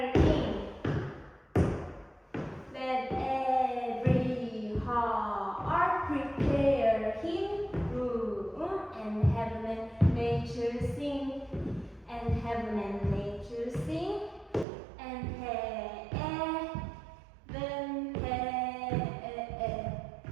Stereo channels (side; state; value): left; drops out; at 14.7 s